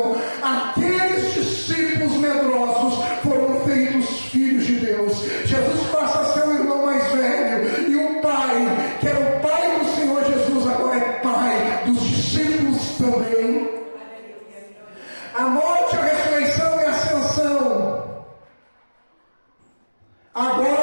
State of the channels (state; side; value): inverted; both; correlation -1.00